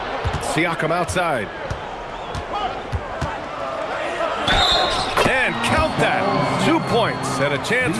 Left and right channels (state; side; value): identical; both; correlation 1.00